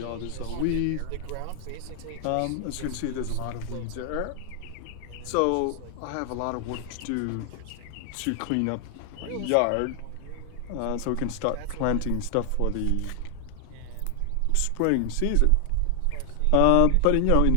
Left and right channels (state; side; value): different; both; correlation 0.00